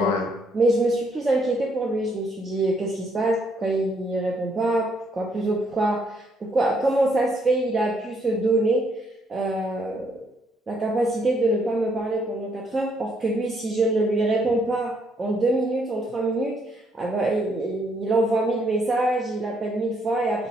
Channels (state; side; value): normal; both; correlation 0.71